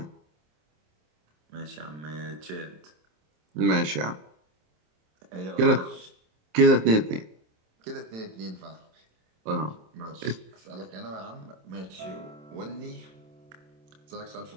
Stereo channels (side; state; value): left; late; 27 ms